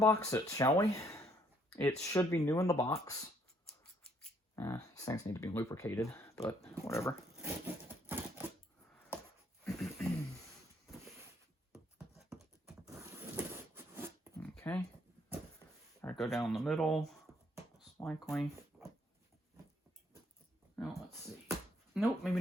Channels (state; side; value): normal; both; correlation 0.68